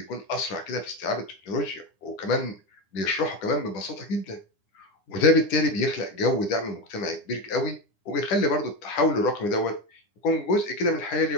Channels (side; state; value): right; late; 9.8 ms